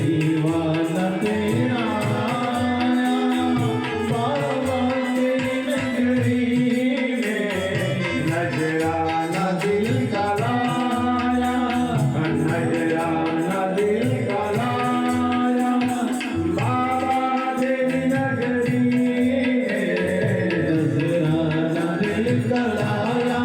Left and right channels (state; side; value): identical; both; correlation 1.00